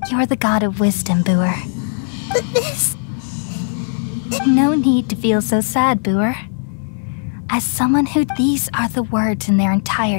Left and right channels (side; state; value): right; silent; 67 dB below the other